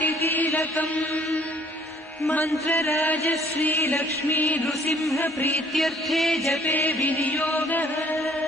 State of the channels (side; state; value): both; normal; correlation 0.58